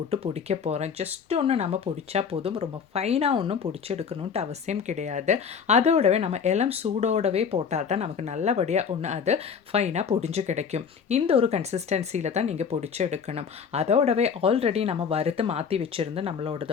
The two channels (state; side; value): quieter; right; 6.6 dB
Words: பொடிக்க போகிறேன். ஜஸ்ட் ஒன்று நம்ம பொடிச்சா போதும். ரொம்ப ஃபைனாக ஒன்றும் பொடிச்சு எடுக்கணுன்ட்டு அவசியம் கிடையாது. அதோடவே நம்ம இளம் சூடோடவே போட்டால் தான் நமக்கு நல்லபடியாக ஒன்று அது ஃபைனாக பொடிஞ்சு கிடைக்கும். இந்த ஒரு கன்சிஸ்டன்சியில் தான் நீங்கள் பொடிச்சு எடுக்கணும். அதோடவே ஆல்ரெடி நம்ம வறுத்து மாற்றி வச்சுருந்து